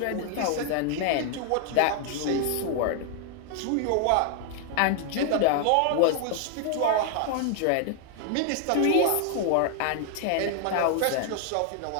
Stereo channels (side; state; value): both; different; correlation 0.00